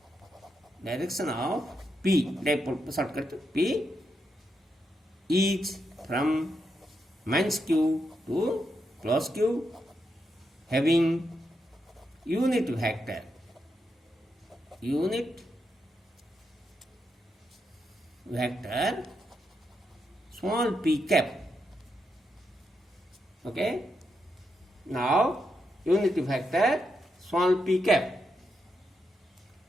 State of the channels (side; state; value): both; normal; correlation 0.83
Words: P, dipole shortcut P, is from minus Q to plus Q having unit vector small p cap. Okay. Now, unit vector small p cap.